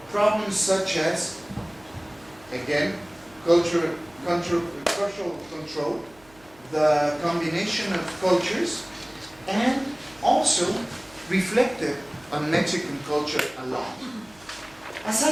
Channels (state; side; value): noise; right; hum, 27 dB below the sound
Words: problems such as, again, cultural control, the combination of cultures, and also reflected on Mexican culture alone. As